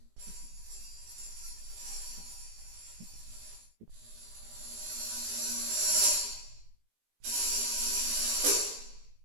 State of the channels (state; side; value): late; left; 18 ms